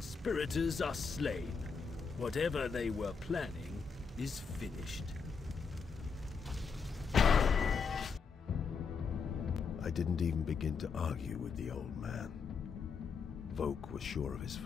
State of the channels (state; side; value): quieter; right; 5.5 dB